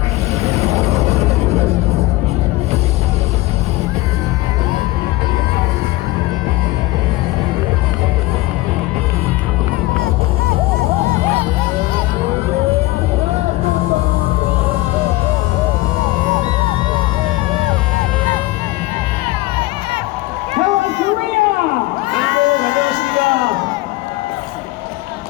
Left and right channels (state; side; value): quieter; right; 19.1 dB